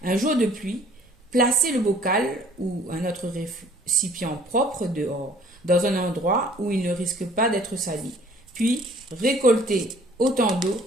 Un jour de pluie, placez le bocal ou un autre récipient propre dehors, dans un endroit où il ne risque pas d'être sali. Puis, récoltez autant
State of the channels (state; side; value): normal; both; correlation 0.56